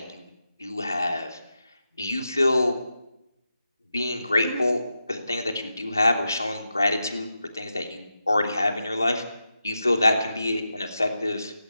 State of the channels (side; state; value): both; inverted; correlation -0.88